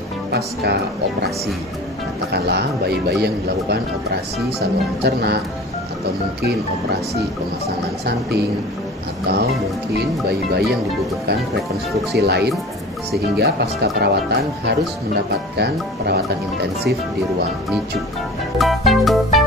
pasca operasi, katakanlah bayi-bayi yang dilakukan operasi saluran cerna atau mungkin operasi pemasangan samping atau mungkin bayi-bayi yang dibutuhkan rekonstruksi lain sehingga pasca perawatan harus mendapatkan perawatan intensif di ruang NICU.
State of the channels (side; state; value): both; normal; correlation 0.39